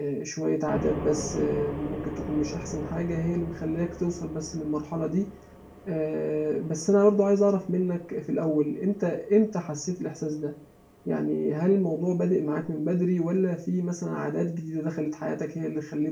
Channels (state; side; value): identical; both; correlation 1.00